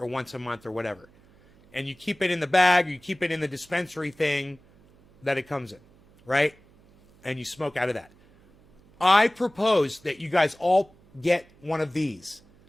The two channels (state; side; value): noise; right; hum, 29 dB below the sound